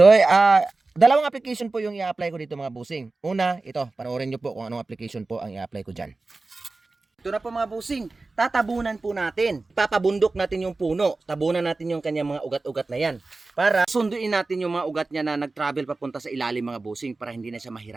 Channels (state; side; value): quieter; left; 3.5 dB